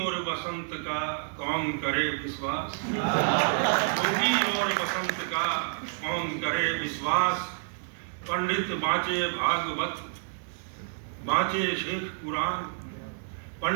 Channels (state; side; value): silent; left; digital silence